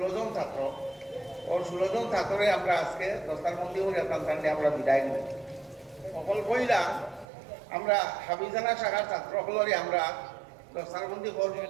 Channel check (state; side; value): drops out; left; at 7.2 s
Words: জন ছাত্র ওর 16 জন ছাত্রে আমরা আজকে দস্তারবন্দি করে টানটানে আমরা বিদায় নেব সকল বইলা আমরা হাফিজানা শাখার ছাত্রসকলরে আমরা দস্তারবন্দি করব